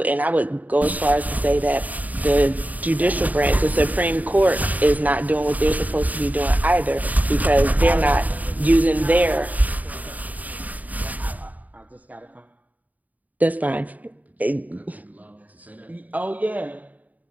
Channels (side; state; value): left; late; 0.076 ms